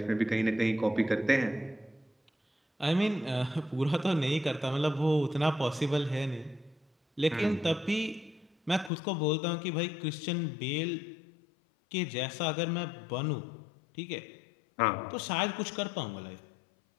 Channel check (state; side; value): drops out; right; at 8.9 s